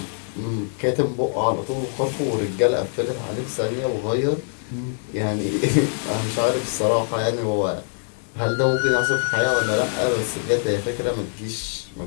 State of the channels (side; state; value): right; silent; 56 dB below the other